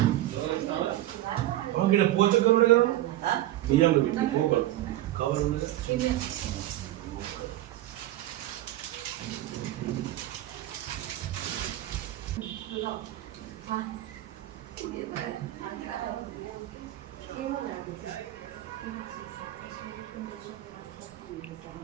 ఇక్కడ పోచకం ఉంది కదా బియ్యంలో పెట్టి పోగలు కవర్ ఉంది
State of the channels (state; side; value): quieter; left; 14.9 dB